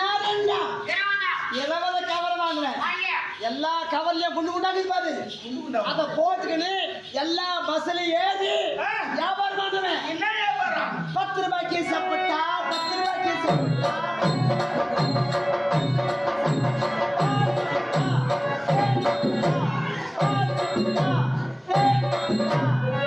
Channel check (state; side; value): identical; both; correlation 1.00